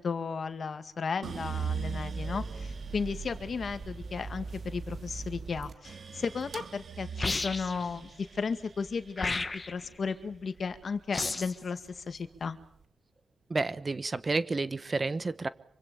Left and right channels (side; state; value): both; normal; correlation 0.88